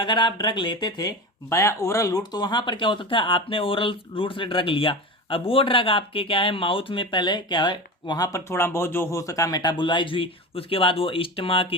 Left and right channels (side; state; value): both; normal; correlation 0.27